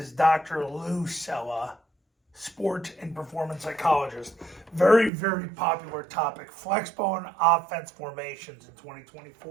Dr. Lou Sella, sports and performance psychologist. Very, very popular topic. Flexbone offense formations in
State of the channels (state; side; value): drops out; left; at 5.1 s